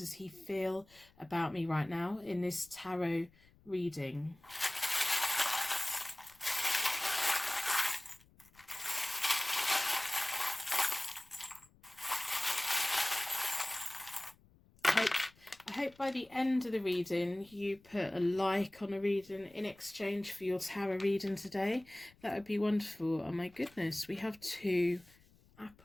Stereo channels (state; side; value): noise; left; rumble, 28 dB below the sound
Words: he feel about me right now in this tarot reading. I hope by the end of the reading you put a like on a reading in exchange for your tarot reading today. That would be wonderful. Oh my goodness, we have 2